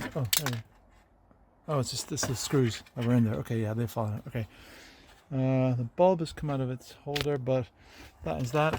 Oh, there. Oh, it's just this is screws that were in there. Okay, yeah, they fall out. Okay. The bulb has come out of its holder, but that is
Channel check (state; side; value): identical; both; correlation 1.00